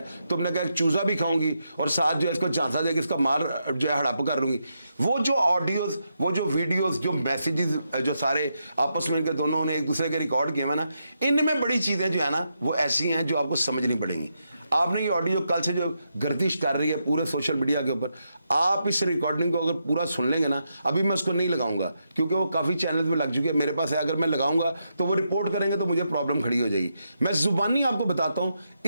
तुमने कहा चूजा भी खाऊंगी और साथ जो है इसको झांसा देकर इसका मार जो है हड़प कर लूंगी। वो जो ऑडियोज, वो जो वीडियोस, जो मैसेजेस जो सारे आपस में इनके दोनों ने एक दूसरे के रिकॉर्ड किए हैं ना, इनमें बड़ी चीज़ें जो है ना वो ऐसी हैं जो आपको समझनी पड़ेंगी। आपने ये ऑडियो कल से जो गर्दिश कर रही है पूरे सोशल मीडिया के ऊपर, आप इस रिकॉर्डिंग को अगर पूरा सुन लेंगे ना, अभी मैं उसको नहीं लगाऊंगा क्योंकि वो काफ़ी चैनल में लग चुकी है, मेरे पास है। अगर मैं लगाऊंगा तो वो रिपोर्ट करेंगे तो मुझे प्रॉब्लम खड़ी हो जाएगी। मैं जुबानी आपको बताता हूँ,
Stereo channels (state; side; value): inverted; both; correlation -0.83